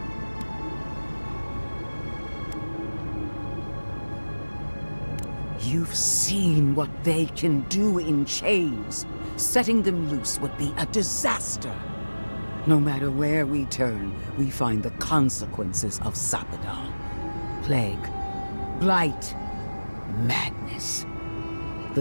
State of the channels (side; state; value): both; inverted; correlation -1.00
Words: You've seen what they can do in chains. Setting them loose would be a disaster. No matter where we turn, we find the consequences of Sapadal. Plague, blight, madness.